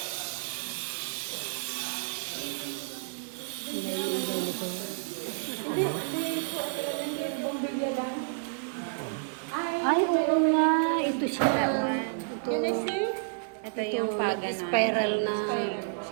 Yung ilaw nito. Ay, oo nga. Ito siya. That one. Ito. Ito Ito yung paganon. Spiral na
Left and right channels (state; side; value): silent; left; digital silence